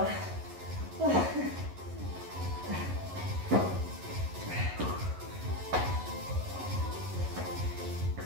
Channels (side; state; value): left; late; 11 ms